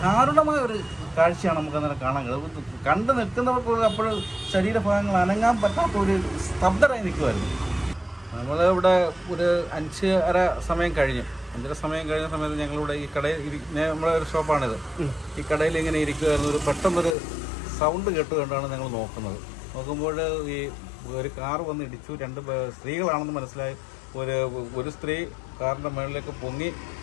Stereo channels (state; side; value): drops out; right; at 17.2 s